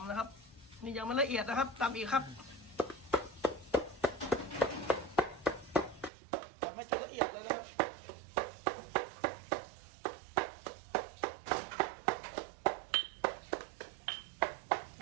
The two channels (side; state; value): left; drops out; at 6.1 s